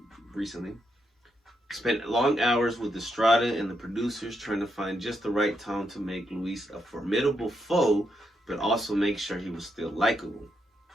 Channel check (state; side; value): normal; both; correlation 0.81